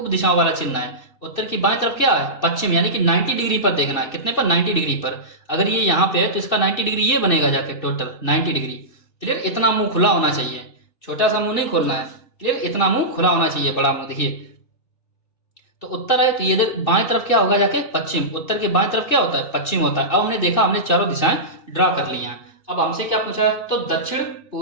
दिशाओं वाला चिन्ह है। उत्तर की बाएं तरफ क्या है, पश्चिम, यानी कि 90 डिग्री पर देखना है। कितने पर, 90 डिग्री पर। अगर ये यहाँ पे है तो इसका 90 डिग्री ये बनेगा जाके, टोटल 90 डिग्री। क्लियर, इतना मुंह खुला होना चाहिए, छोटा सा मुंह नहीं खोलना है। क्लियर, इतना मुंह खुला होना चाहिए, बड़ा मुंह। देखिए तो उत्तर है तो ये इधर बाएं तरफ क्या होगा जाके, पश्चिम। उत्तर के बाएं तरफ क्या होता है, पश्चिम होता है। अब हमने देखा, हमने चारों दिशाएं ड्रा कर ली हैं। अब हमसे क्या पूछा है, तो दक्षिण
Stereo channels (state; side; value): late; right; 2.6 ms